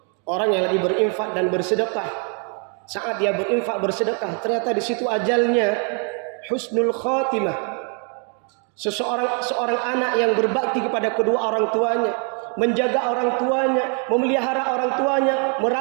Orang yang lagi berinfak dan bersedekah, saat dia berinfak bersedekah, ternyata di situ ajalnya husnul khotimah. Seorang anak yang berbakti kepada kedua orang tuanya, menjaga orang tuanya, memelihara orang tuanya,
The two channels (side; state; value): left; quieter; 39.8 dB